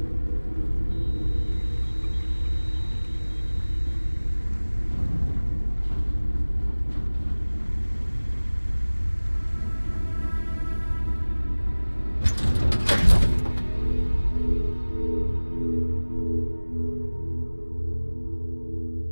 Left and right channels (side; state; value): both; inverted; correlation -1.00